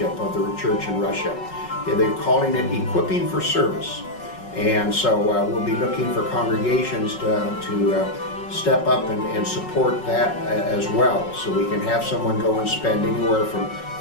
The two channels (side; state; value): right; late; 5.4 ms